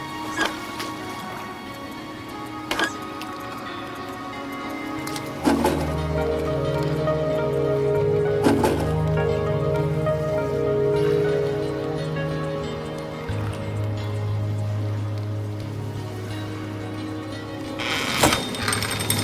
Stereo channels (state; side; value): identical; both; correlation 1.00